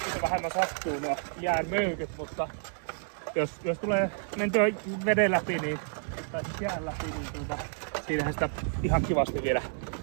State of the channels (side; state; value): left; silent; digital silence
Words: vähemmän sattuu nuo jään möykyt, mutta jos tulee mentyä veden läpi, niin, tai siis jään läpi, niin siinähän sitä ihan kivasti vielä